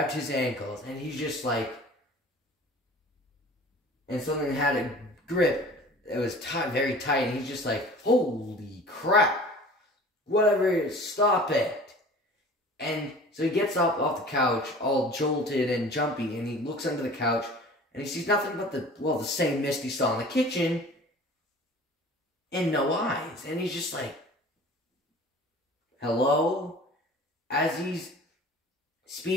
his ankles. And he's just like, and something had a grip. It was very tight. And he's just like, holy crap. Whatever it is, stop it. And so he gets up off the couch, all jolted and jumpy, and he looks under the couch, and he sees nothing but the same mist he saw in the kitchen, and no eyes. And he's just like, hello? As he's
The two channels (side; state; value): both; normal; correlation 0.44